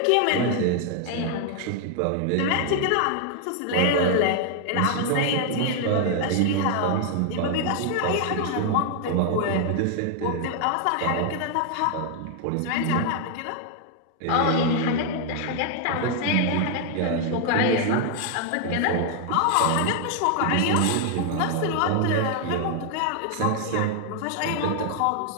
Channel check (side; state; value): both; different; correlation 0.00